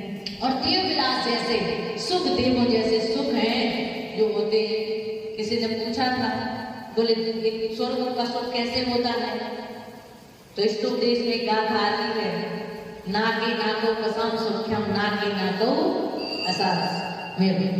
और देव विलास जैसे सुख, देवों जैसे सुख हैं जो होते हैं। किसी ने पूछा था, बोले स्वर्ग का सुख कैसे होता है? तो इस उपदेश में गाथा आती है, नाके नाको कसम सुख्यम नाके नाको असास।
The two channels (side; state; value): both; identical; correlation 1.00